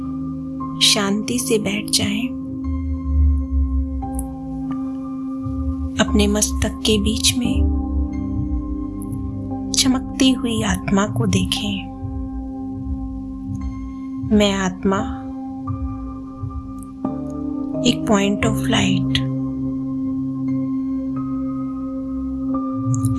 शांति से बैठ जाएं, अपने मस्तक के बीच में चमकती हुई आत्मा को देखें। मैं आत्मा एक पॉइंट ऑफ लाइट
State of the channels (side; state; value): both; identical; correlation 1.00